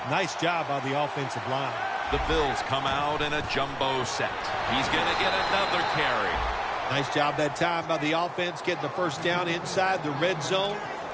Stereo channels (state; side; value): identical; both; correlation 1.00